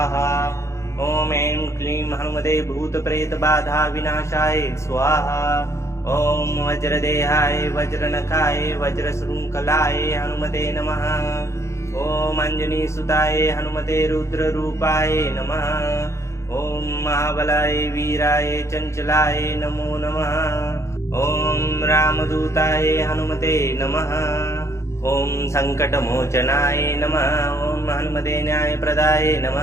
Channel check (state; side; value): late; right; 0.14 ms